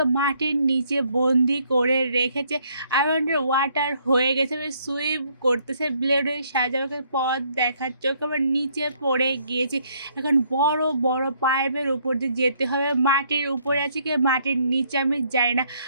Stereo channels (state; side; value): inverted; both; correlation -0.67